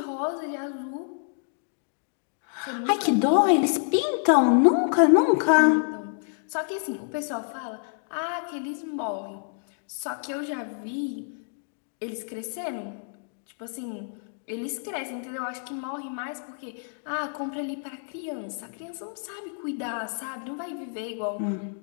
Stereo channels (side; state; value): right; silent; digital silence